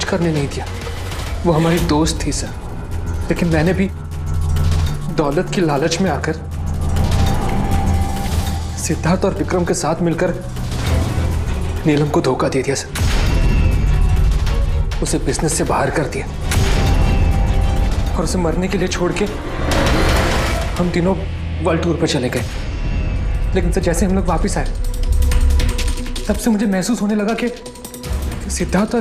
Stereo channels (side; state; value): both; identical; correlation 1.00